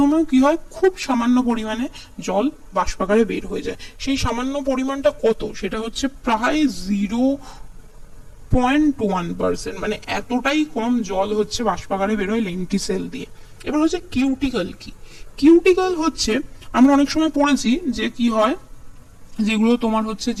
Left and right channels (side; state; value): both; identical; correlation 1.00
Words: কি হয়, খুব সামান্য পরিমাণে জল বাষ্পাকারে বের হয়ে যায়। সেই সামান্য পরিমাণটা কত, সেটা হচ্ছে প্রায় 0.1%, মানে এতটাই কম জল হচ্ছে বাষ্পাকারে বের হয় লেন্টিসেল দিয়ে। এবার হচ্ছে কিউটিকল কি, কিউটিকল হচ্ছে আমরা অনেক সময় পড়েছি যে কি হয়, যেগুলো তোমার হচ্ছে